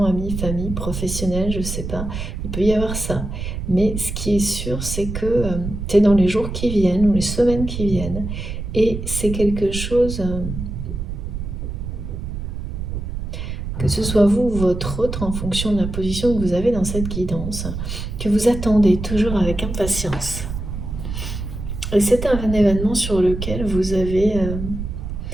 amis, famille, professionnel, je sais pas, il peut y avoir ça. Mais ce qui est sûr, c'est que c'est dans les jours qui viennent ou les semaines qui viennent, et c'est quelque chose, que ce soit vous ou votre autre, en fonction de la position que vous avez dans cette guidance, que vous attendez toujours avec impatience. Et c'est un événement sur lequel vous avez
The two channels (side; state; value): right; noise; rumble, 6 dB below the sound